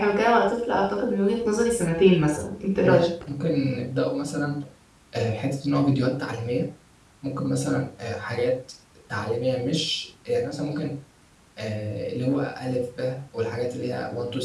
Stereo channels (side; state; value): both; identical; correlation 1.00